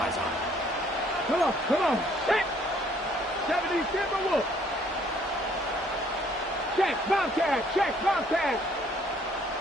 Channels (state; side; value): normal; both; correlation 0.62